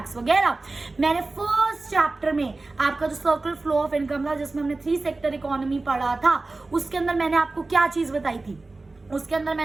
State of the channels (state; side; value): quieter; left; 3.3 dB